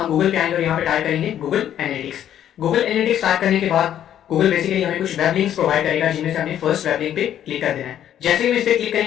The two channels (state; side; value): quieter; right; 10.6 dB